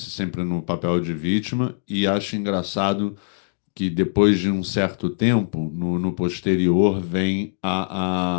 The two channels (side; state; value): right; silent; digital silence